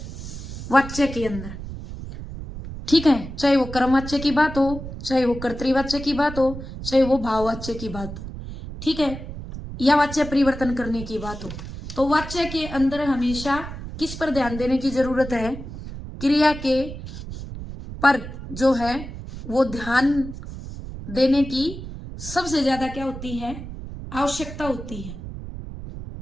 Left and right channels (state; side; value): noise; right; rumble, 10 dB below the sound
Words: वाच्य के अंदर। ठीक है, चाहे वो कर्मवाच्य की बात हो, चाहे वो कर्तृवाच्य की बात हो, चाहे वो भाववाच्य की बात हो, ठीक है, या वाच्य परिवर्तन करने की बात हो, तो वाच्य के अंदर हमेशा किस पर ध्यान देने की जरूरत है, क्रिया के पर जो है वो ध्यान देने की सबसे ज्यादा क्या होती है, आवश्यकता होती है।